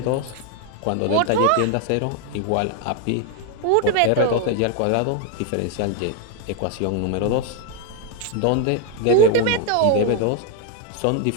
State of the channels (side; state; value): both; different; correlation 0.01